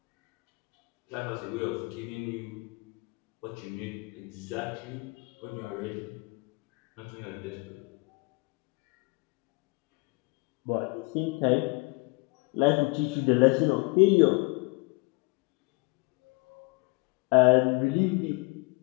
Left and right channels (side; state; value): right; quieter; 28.4 dB